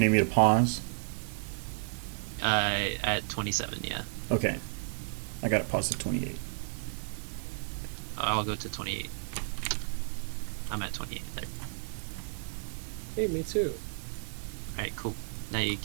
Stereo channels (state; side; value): silent; left; digital silence